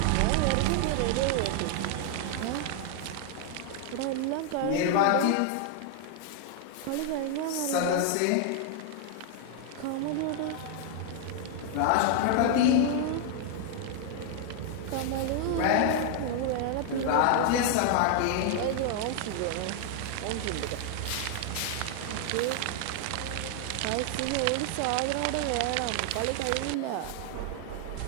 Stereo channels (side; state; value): both; different; correlation 0.00